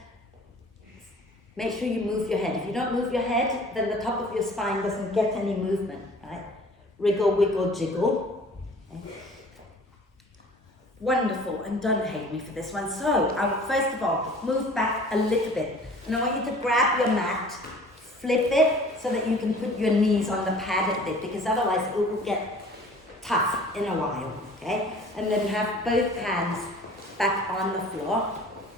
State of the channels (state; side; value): normal; both; correlation 0.48